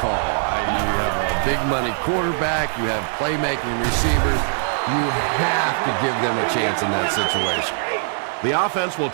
You have a big money quarterback, you have playmaking receivers. You have to give them a chance in that situation. The offense will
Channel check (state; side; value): silent; left; digital silence